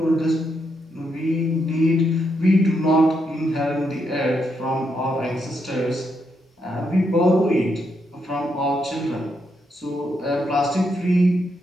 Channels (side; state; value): both; normal; correlation 0.80